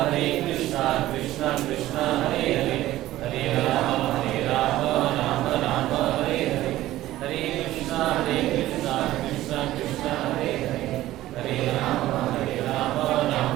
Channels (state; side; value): quieter; left; 15.2 dB